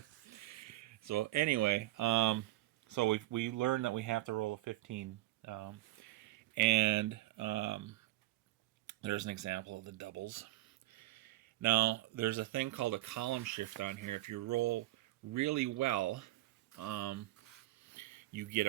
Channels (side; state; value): left; quieter; 17.1 dB